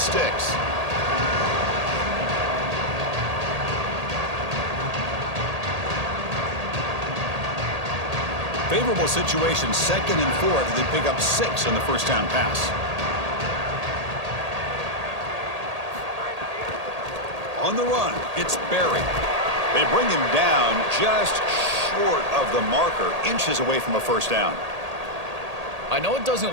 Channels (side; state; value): left; late; 1.8 ms